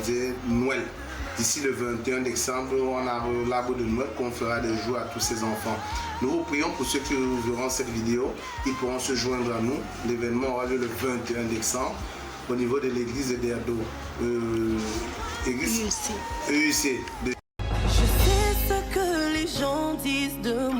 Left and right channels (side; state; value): both; identical; correlation 1.00